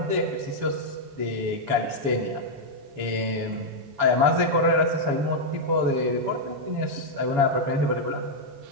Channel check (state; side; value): late; left; 7.0 ms